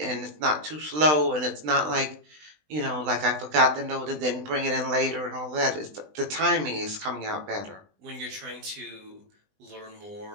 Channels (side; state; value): left; late; 20 ms